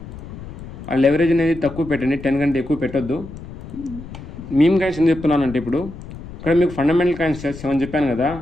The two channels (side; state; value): left; noise; rumble, 13 dB below the sound